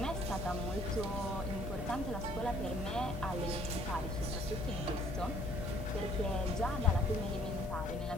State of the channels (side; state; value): both; normal; correlation 0.61